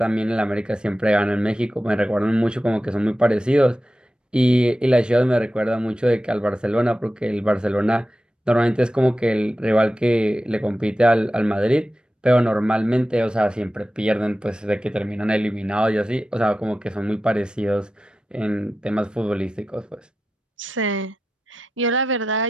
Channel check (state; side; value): normal; both; correlation 0.92